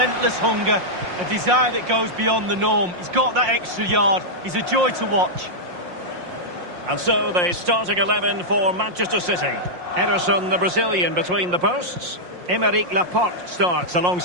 hunger, a desire that goes beyond the norm. He's got that extra yard. He's a joy to watch. And so the starting 11 for Manchester City. Ederson, the Brazilian, between the posts. Aymeric Laporte starts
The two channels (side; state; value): left; late; 5.6 ms